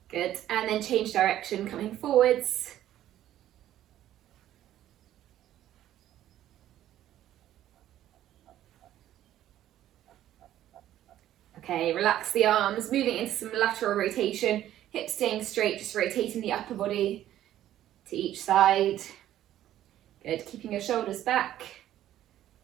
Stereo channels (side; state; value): left; quieter; 12.5 dB